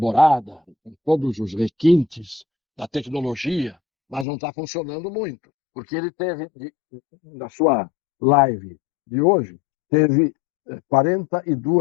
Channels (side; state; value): right; drops out; at 4.2 s